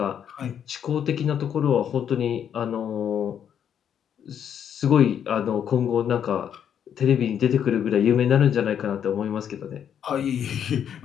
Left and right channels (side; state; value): right; quieter; 8.8 dB